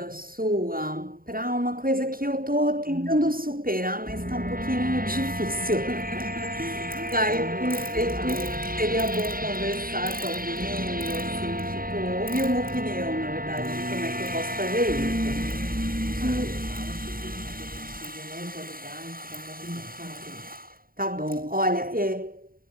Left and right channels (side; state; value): left; late; 0.42 ms